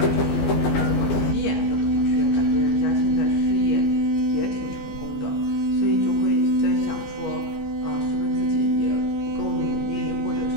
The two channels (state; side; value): late; right; 14 ms